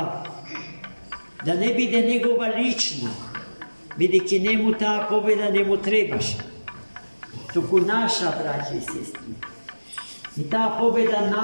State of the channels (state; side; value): inverted; both; correlation -1.00